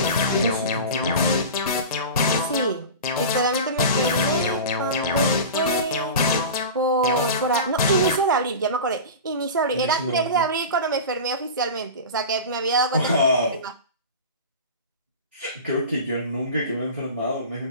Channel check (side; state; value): both; inverted; correlation -0.30